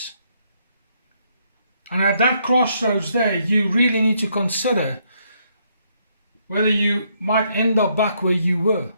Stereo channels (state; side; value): inverted; both; correlation -0.73